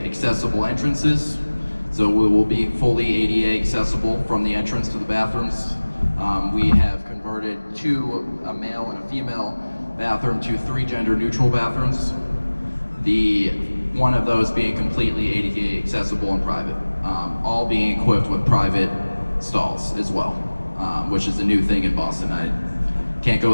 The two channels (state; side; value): inverted; both; correlation -1.00